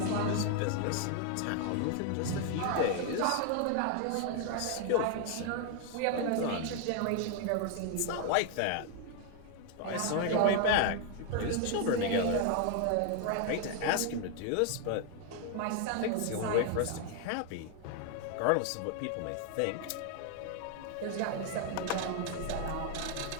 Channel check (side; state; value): both; different; correlation 0.00